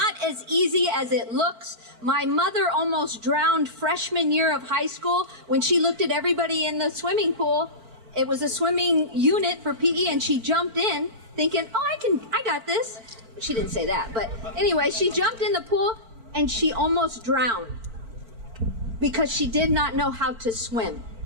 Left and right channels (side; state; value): left; late; 4.4 ms